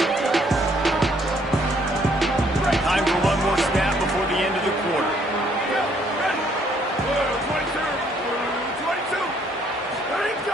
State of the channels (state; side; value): normal; both; correlation 0.66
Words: Time for one more snap before the end of the quarter. 22. Ready to